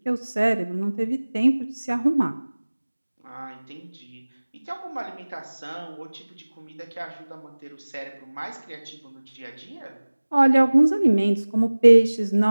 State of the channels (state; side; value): inverted; both; correlation -1.00